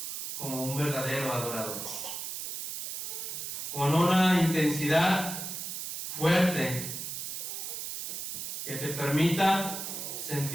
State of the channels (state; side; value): noise; right; hiss, 5 dB below the sound